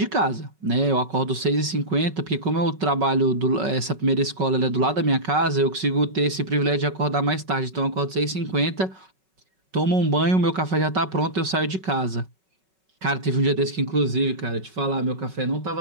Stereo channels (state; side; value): late; left; 5.3 ms